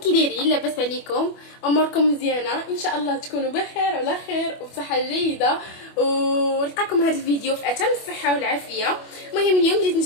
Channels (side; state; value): right; late; 25 ms